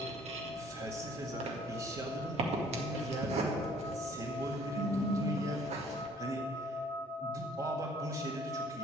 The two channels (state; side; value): normal; both; correlation 0.57